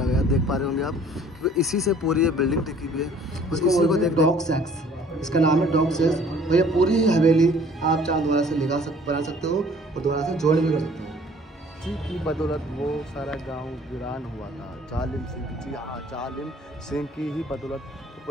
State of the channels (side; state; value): both; normal; correlation 0.54